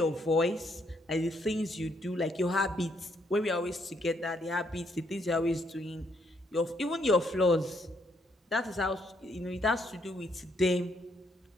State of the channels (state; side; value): normal; both; correlation 0.73